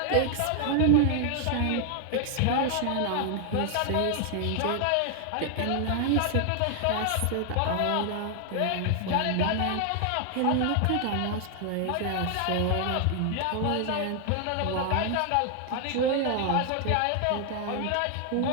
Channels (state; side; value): different; both; correlation 0.00